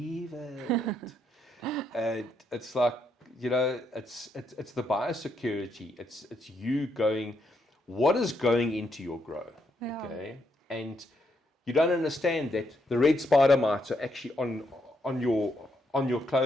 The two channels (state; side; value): normal; both; correlation 0.77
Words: it. And it's like, it's the biosecurity. It's you going, what is going into your grow? Yeah. Okay. And you don't understand that the red spider mites are actually on your